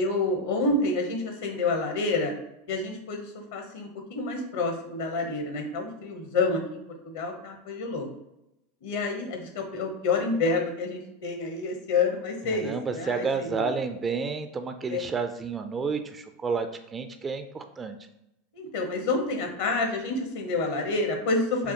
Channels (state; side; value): normal; both; correlation 0.09